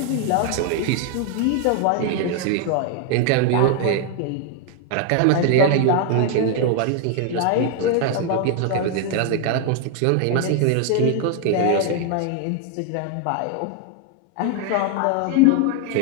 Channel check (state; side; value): different; both; correlation 0.01